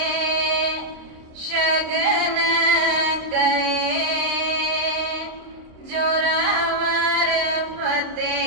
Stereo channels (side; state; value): left; late; 26 ms